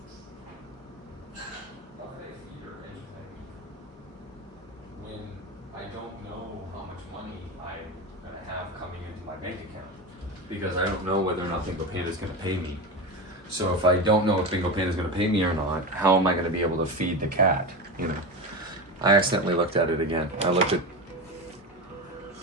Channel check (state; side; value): normal; both; correlation 0.22